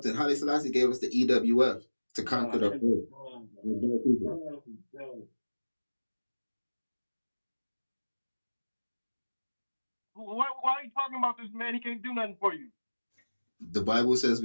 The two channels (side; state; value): both; inverted; correlation -1.00